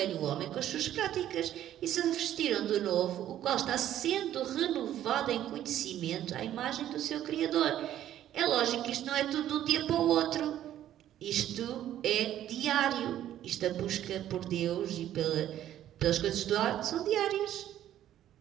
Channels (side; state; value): left; quieter; 11.9 dB